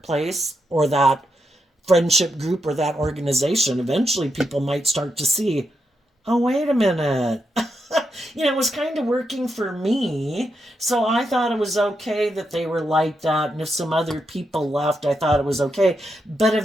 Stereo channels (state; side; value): normal; both; correlation 0.84